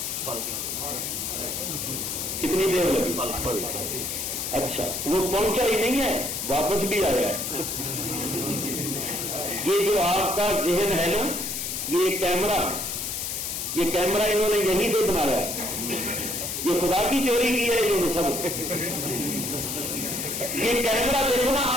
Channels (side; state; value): left; noise; hiss, 3 dB below the sound